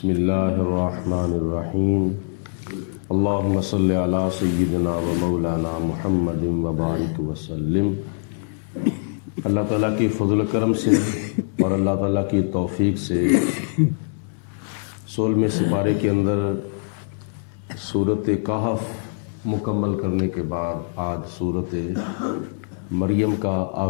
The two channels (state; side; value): silent; right; digital silence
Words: اللہ الرحمن الرحیم اللہم صلی علی سیدنا و مولانا محمد وبارک وسلم۔ اللہ تعالیٰ کی فضل و کرم سے اور اللہ تعالیٰ کی توفیق سے 16ویں سپارے کے اندر سورۃ کہف مکمل کرنے کے بعد آج سورۃ مریم کا